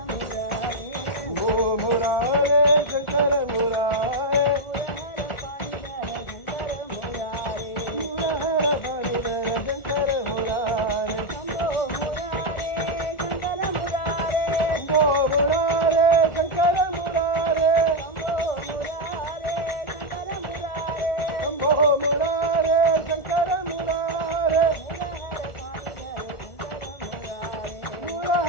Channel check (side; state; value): right; late; 1.4 ms